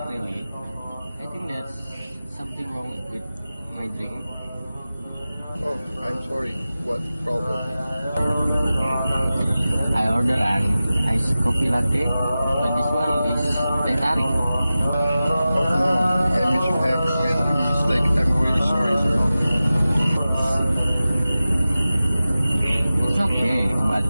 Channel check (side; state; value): both; inverted; correlation -0.95